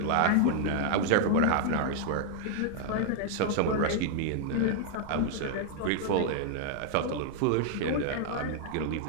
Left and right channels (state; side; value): different; both; correlation 0.00